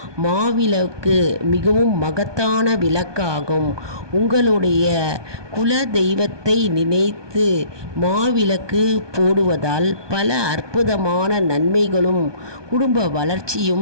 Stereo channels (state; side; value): late; left; 1.2 ms